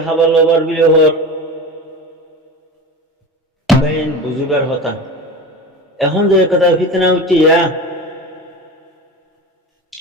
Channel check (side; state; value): both; normal; correlation 0.30